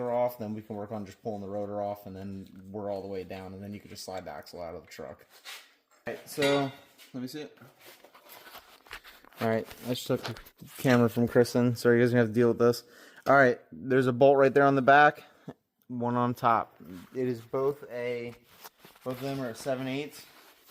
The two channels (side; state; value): both; identical; correlation 1.00